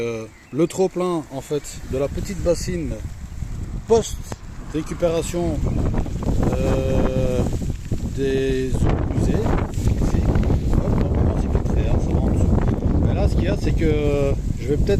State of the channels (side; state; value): both; identical; correlation 1.00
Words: trop-plein en fait de la petite bassine post récupération des eaux usées. Ici. Hop, c'est filtré, hein, ça va en dessous. Mais là, ce qu'il y a, c'est que je vais